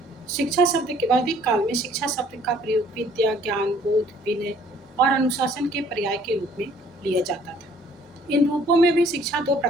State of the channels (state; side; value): normal; both; correlation 0.59